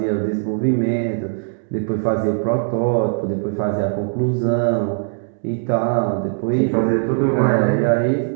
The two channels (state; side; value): silent; left; digital silence